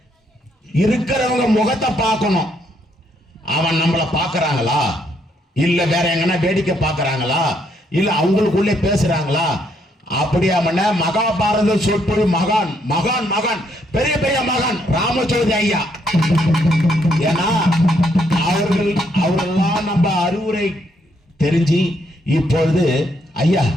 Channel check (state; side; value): normal; both; correlation 0.73